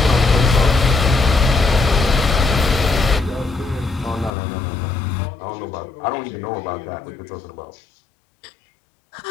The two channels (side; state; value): right; drops out; at 4.3 s